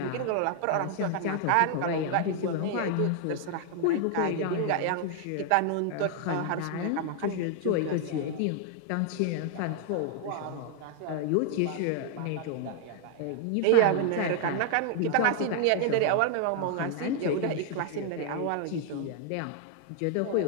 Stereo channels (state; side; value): different; both; correlation 0.00